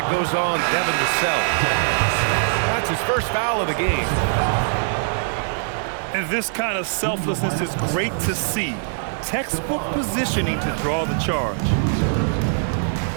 goes on Devin Vassell. That's his first foul of the game. And this kind of selflessness is great to see. Textbook positioning to draw the charge.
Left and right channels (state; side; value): silent; left; digital silence